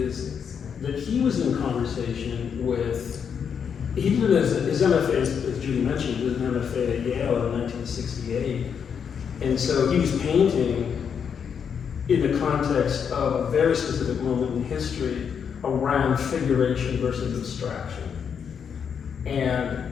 that he was in conversation with, he did his MFA, as Judy mentioned, he did an MFA at Yale in 1968. And so he was painting in the context of a very specific moment in history around figuration versus abstraction. And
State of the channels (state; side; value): quieter; right; 7.2 dB